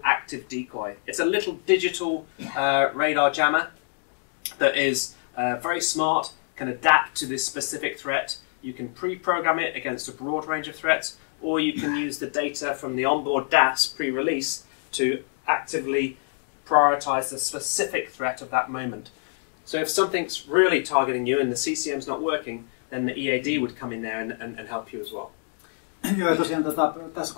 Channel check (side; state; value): right; silent; 61 dB below the other